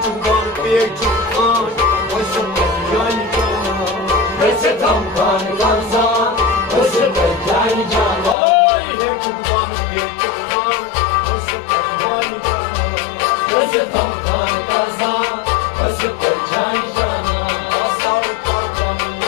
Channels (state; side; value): drops out; right; at 8.3 s